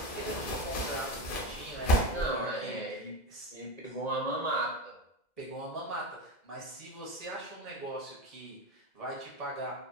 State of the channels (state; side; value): late; right; 2.0 ms